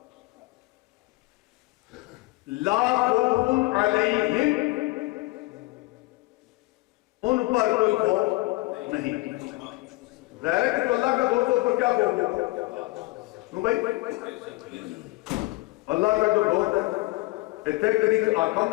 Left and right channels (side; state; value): right; quieter; 21.5 dB